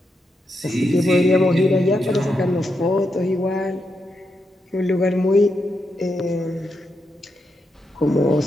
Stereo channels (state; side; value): normal; both; correlation 0.84